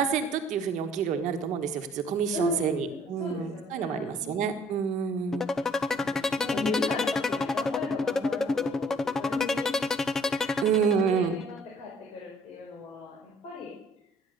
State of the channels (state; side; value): normal; both; correlation 0.57